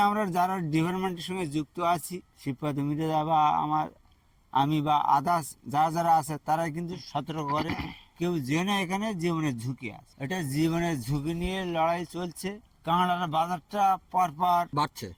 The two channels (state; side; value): identical; both; correlation 1.00